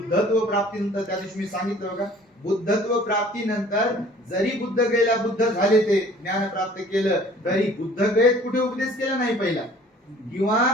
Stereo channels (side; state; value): both; normal; correlation 0.51